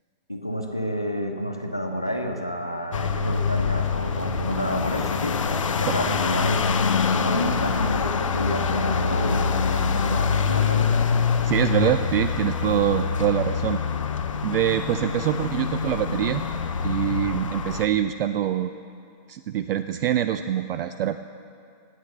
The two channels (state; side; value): inverted; both; correlation -0.37